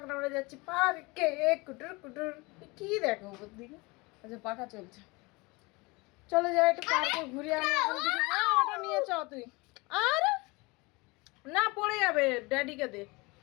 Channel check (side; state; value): right; quieter; 25.3 dB